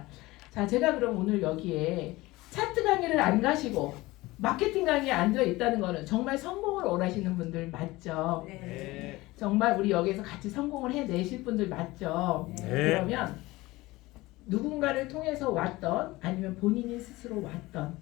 자, 제가 그럼 오늘 여기에 차트 강의를 안 가시고 마케팅 강의에 앉아 있다는 거는 정말 성공을 원하시는 분들 맞죠? 네. 정말 우리 여기서 같이 성공을 해내실 분들 맞죠? 네. 그러면 누군가를 통해서 왔던 아니면 본인이 스스로 왔던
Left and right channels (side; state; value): right; quieter; 20.0 dB